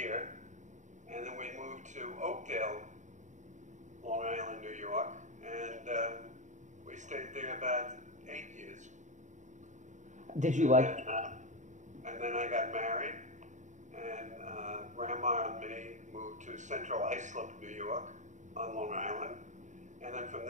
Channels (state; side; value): late; left; 0.35 ms